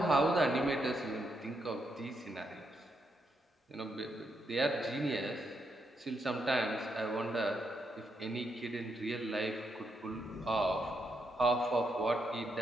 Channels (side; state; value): both; normal; correlation 0.80